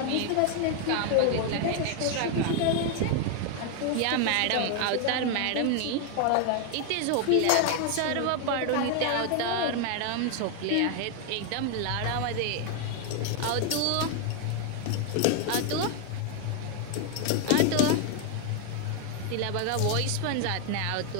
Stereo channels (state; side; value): different; both; correlation 0.00